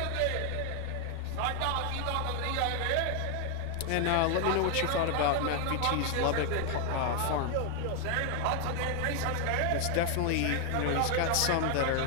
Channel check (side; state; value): both; different; correlation 0.00